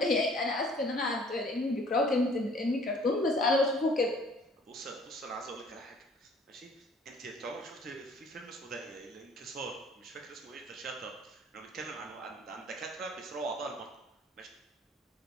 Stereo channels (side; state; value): both; normal; correlation 0.55